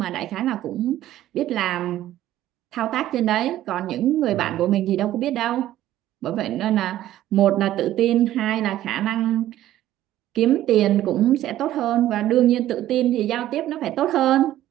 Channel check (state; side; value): quieter; left; 13.4 dB